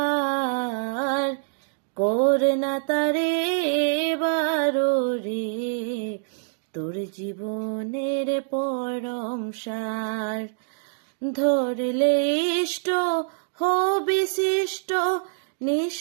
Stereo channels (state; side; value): silent; left; digital silence